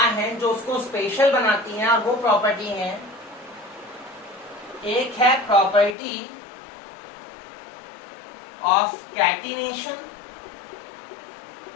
हैं जो उसको स्पेशल बनाती हैं, और वो प्रॉपर्टी है, एक है प्रॉपर्टी ऑफ कैटिनेशन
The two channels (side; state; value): right; drops out; at 6.0 s